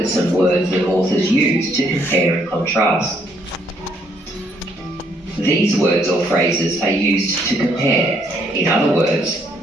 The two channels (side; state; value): both; normal; correlation 0.70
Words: some words that authors use to compare and contrast. These words or phrases are used to compare, in other words,